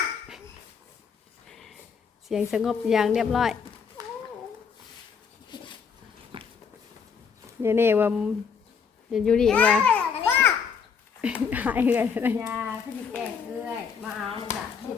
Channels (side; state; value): right; quieter; 6.3 dB